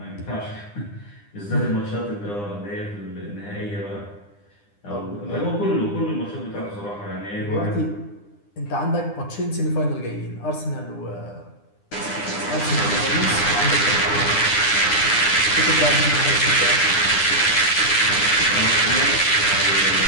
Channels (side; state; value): right; late; 9.9 ms